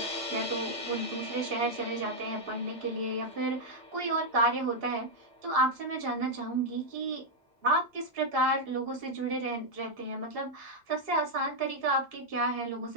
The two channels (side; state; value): both; normal; correlation -0.03